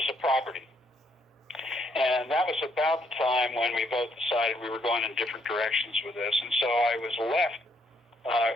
a property. And that was about the time when we both decided we were going in different directions with this. And so I was left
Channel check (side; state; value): both; normal; correlation 0.71